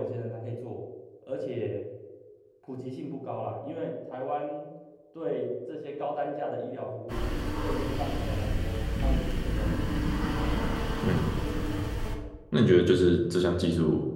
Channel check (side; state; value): both; identical; correlation 1.00